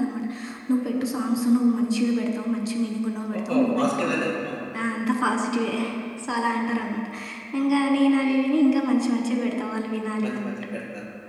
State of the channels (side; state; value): both; identical; correlation 1.00